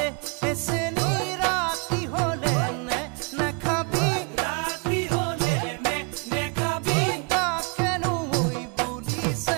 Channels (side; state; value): left; quieter; 34.4 dB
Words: এসে নিরাতি হলে নে খাবি রাতি হলে নে খাবি তা কেন ওই